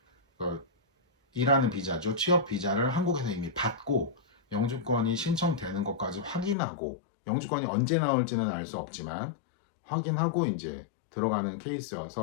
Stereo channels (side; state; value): right; drops out; at 6.6 s